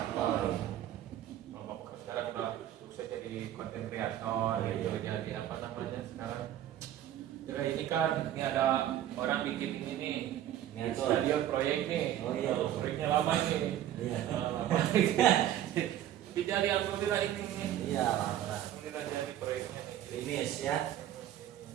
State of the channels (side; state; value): left; quieter; 11.9 dB